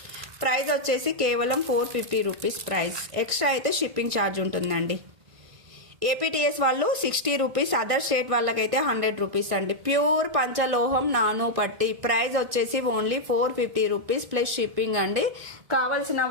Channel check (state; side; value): late; left; 1.6 ms